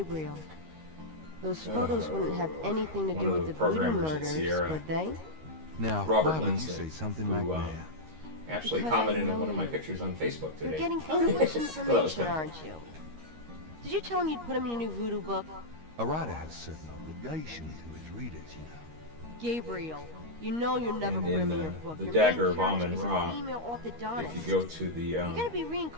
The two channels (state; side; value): late; left; 13 ms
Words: Those photos wouldn't have anything to one do of with the the voodoo programmers at murders, Sierra. would they? Now, Robert why would Lindsay, you say something who, like that? actually Because I commented on know one of my you. pictures on Facebook You're today. getting Oh, privileged nice. Well, that was information, kinda aren't you? Did you tell him you'd put him in a new voodoo book? A writer has certain obligations to his readers, you know. Gabriel, you know you'll never And put in him in the- your book. the Your Dagger main of character Amun is a Ra, female orthodontist. If you go to the You're gonna be